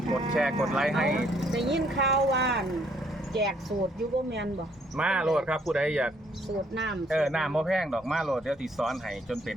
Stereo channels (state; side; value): normal; both; correlation 0.67